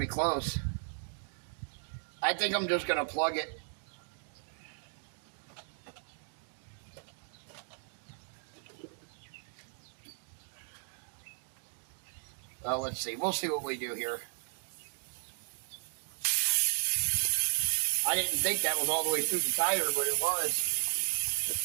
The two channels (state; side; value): silent; left; digital silence